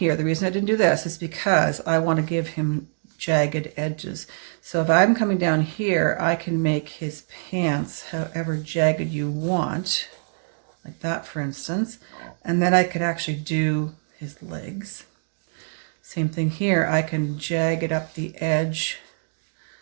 the reason I didn't do this is because I want to give him jagged edges. So if I'm coming down here, I can make his pants however jagged you want, like that for instance. And then I could actually do his legs. Same thing here. I can jagged up the edge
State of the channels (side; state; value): left; silent; digital silence